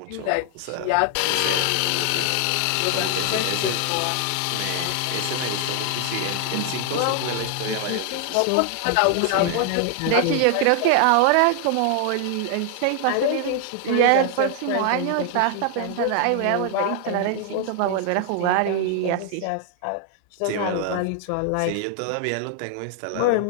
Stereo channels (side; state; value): both; different; correlation 0.00